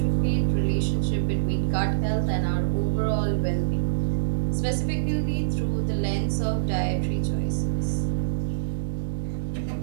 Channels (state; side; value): silent; left; digital silence